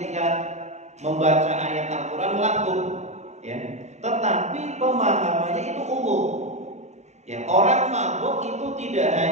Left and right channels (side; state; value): left; late; 0.33 ms